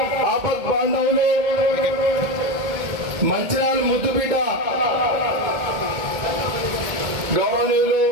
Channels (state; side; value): late; left; 2.2 ms